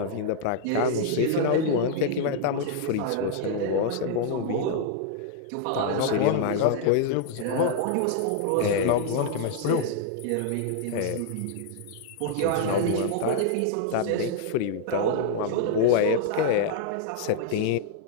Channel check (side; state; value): both; different; correlation -0.01